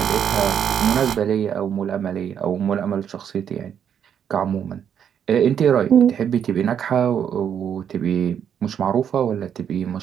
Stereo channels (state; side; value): quieter; left; 8.5 dB